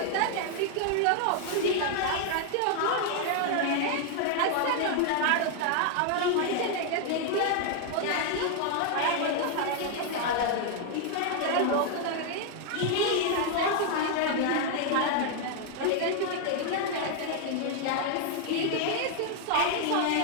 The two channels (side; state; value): both; different; correlation 0.00